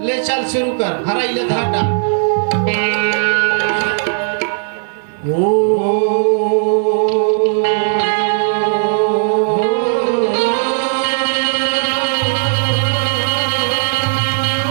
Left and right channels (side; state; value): left; silent; digital silence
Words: ले चल शुरू कर, हरा इले धाटा।